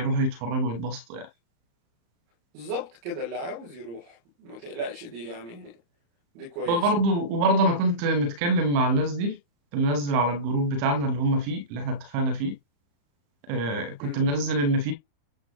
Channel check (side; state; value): left; late; 35 ms